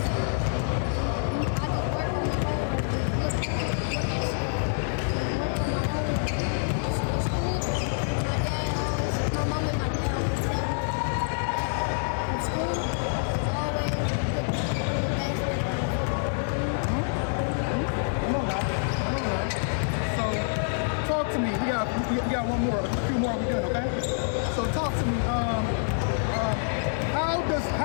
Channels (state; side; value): silent; right; 60 dB below the other